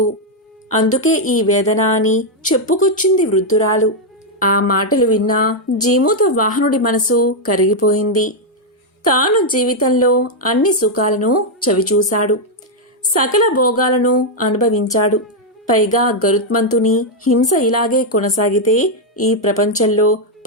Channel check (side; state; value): both; normal; correlation 0.00